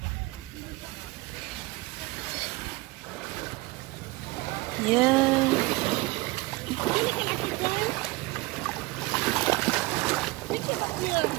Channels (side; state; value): left; quieter; 22.0 dB